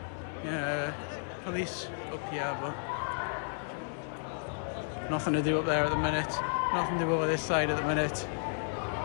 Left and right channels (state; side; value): silent; right; digital silence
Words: Yeah, police up here, but nothing to do up there at the minute. Nothing to do over this side at the minute.